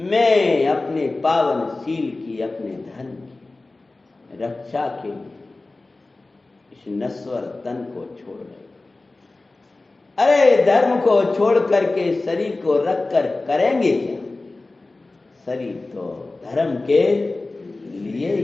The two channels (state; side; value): quieter; right; 3.2 dB